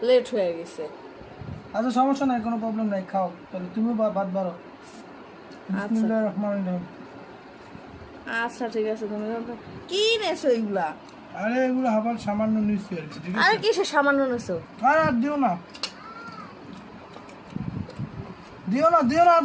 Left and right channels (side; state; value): both; identical; correlation 1.00